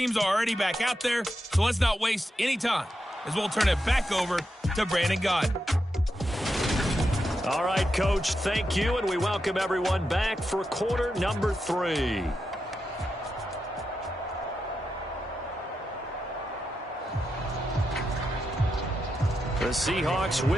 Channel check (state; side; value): normal; both; correlation 0.86